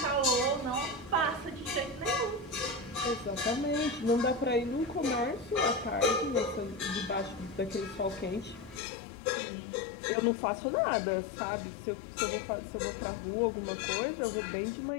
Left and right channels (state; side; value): drops out; right; at 8.8 s